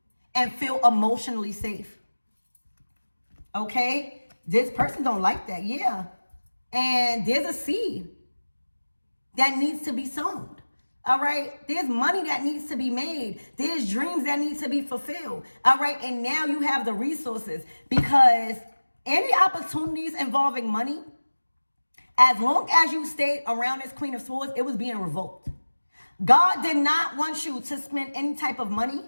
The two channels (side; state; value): both; inverted; correlation -1.00